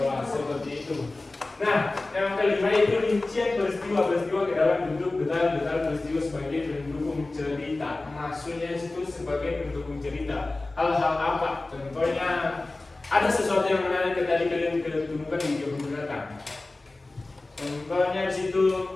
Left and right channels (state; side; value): quieter; right; 3.1 dB